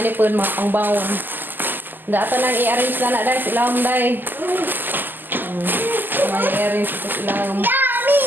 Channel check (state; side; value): late; left; 0.089 ms